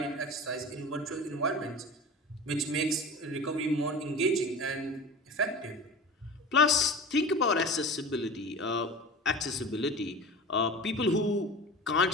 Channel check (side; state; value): both; normal; correlation 0.34